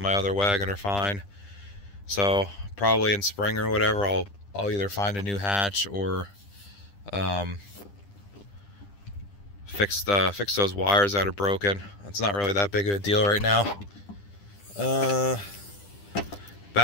my other wagon are fine. So probably in spring or whatever, I'll either find a new hatch or fix those wires that are broken. It's not really that big of a deal right now.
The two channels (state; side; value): late; right; 10 ms